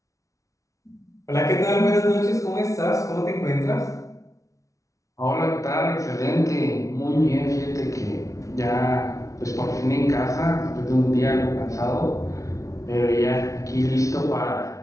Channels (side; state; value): right; late; 0.16 ms